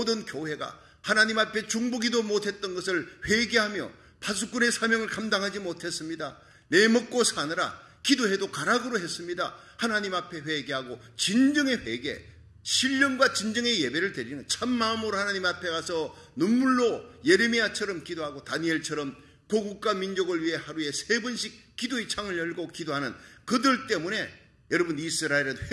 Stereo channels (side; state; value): both; identical; correlation 1.00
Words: 교회가 하나님 앞에 중보기도 못했던 것을 회개하며 파수꾼의 사명을 감당하지 못했습니다. 내 먹고 사느라 기도해도 가락으로 했습니다. 하나님 앞에 회개하고 진정의 회개, 신령과 진정의 예배를 드리는 참마음으로 하나님 앞에 가서 눈물로 예레미야처럼 기도하고 다니엘처럼 고국과 민족을 위해 하루에 3번씩 기도의 창을 열고 기도하는 그들 때문에 여러분 이스라엘은